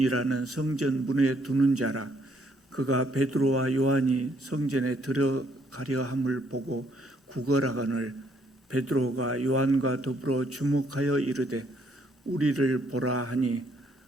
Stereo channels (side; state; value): both; normal; correlation 0.69